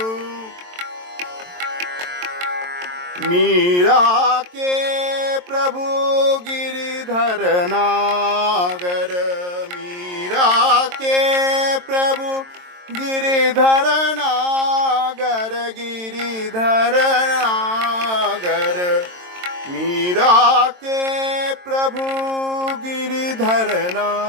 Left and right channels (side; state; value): left; late; 22 ms